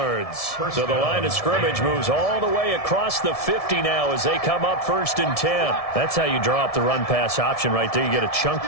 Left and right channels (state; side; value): late; right; 1.7 ms